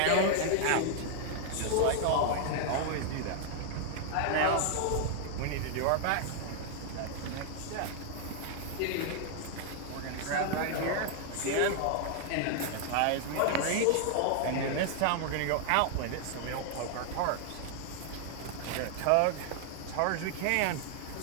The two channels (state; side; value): different; both; correlation 0.00